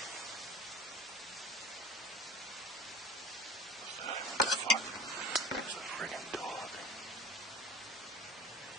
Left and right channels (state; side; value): noise; left; hum, 30 dB below the sound